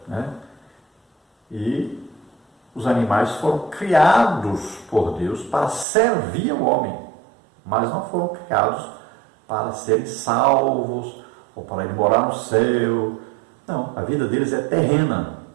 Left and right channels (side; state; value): left; drops out; at 5.9 s